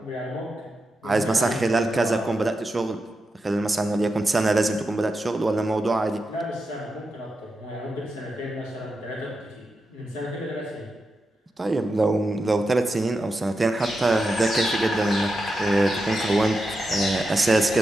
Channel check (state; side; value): normal; both; correlation 0.88